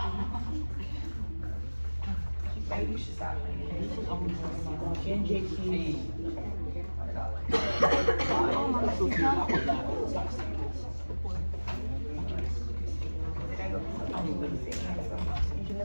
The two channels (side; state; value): both; inverted; correlation -1.00